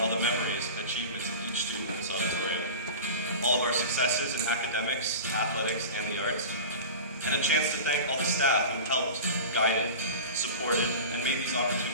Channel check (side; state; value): both; inverted; correlation -0.32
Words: the memories and achievements of each student in this auditorium. All of our successes in academics, athletics, and the arts, and a chance to thank all the staff who helped, guided, supported, and made these